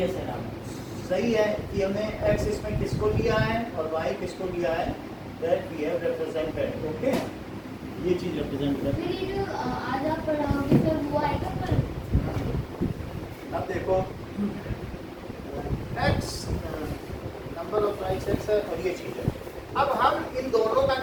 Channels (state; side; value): identical; both; correlation 1.00